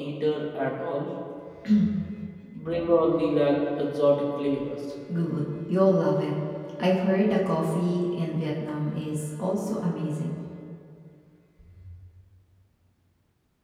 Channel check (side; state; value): both; identical; correlation 1.00